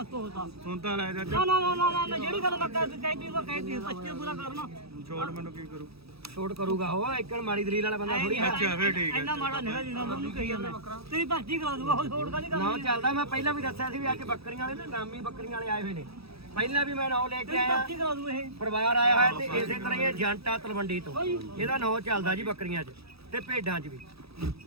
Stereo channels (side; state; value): left; late; 0.77 ms